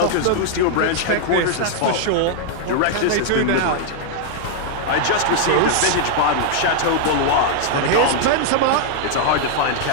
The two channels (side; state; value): both; different; correlation 0.00